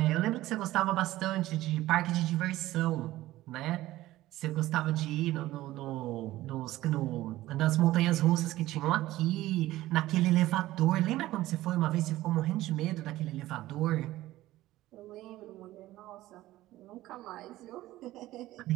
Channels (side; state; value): left; quieter; 16.1 dB